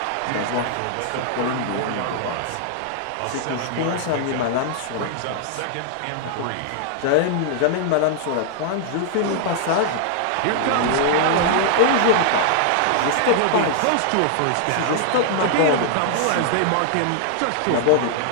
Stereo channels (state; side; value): different; both; correlation 0.00